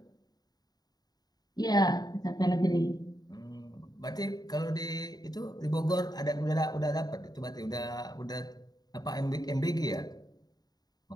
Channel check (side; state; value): right; late; 0.19 ms